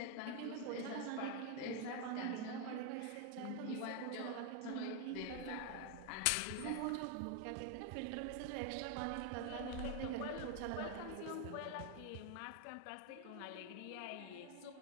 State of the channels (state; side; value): different; both; correlation 0.01